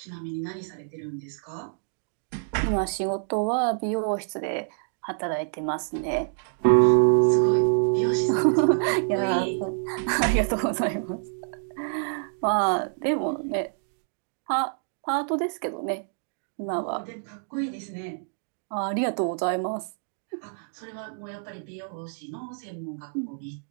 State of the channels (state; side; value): silent; left; digital silence